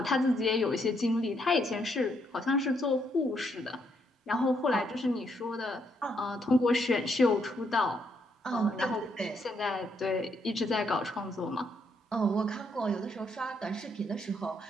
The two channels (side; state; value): both; normal; correlation 0.74